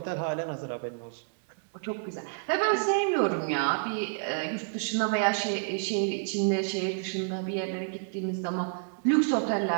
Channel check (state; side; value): silent; left; digital silence